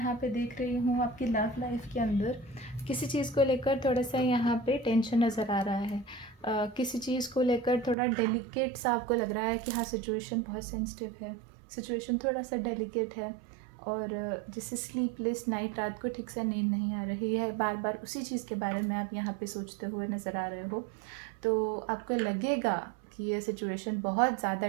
पे देख रही हूँ आपकी लव लाइफ के अंदर किसी चीज़ को लेकर थोड़ा सा यहाँ पे टेंशन नज़र आ रहा है। किसी चीज़ को लेकर थोड़ा डेलिकेट सा आपको लग रहा है कि हाँ सिचुएशन बहुत सेंसिटिव है, सिचुएशन थोड़ा सा डेलिकेट है, और जैसे स्लीपलेस नाइट, रात को ठीक से नींद नहीं आ रही है, बार बार उसी चीज़ के बारे में आप यहाँ पे सोचते हुए नज़र आ रहे हो। तो आपको लगेगा कि ये सिचुएशन बहुत ज़्यादा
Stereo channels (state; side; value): drops out; left; at 8.0 s